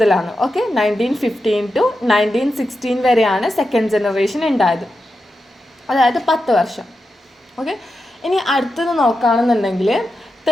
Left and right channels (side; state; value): both; normal; correlation 0.89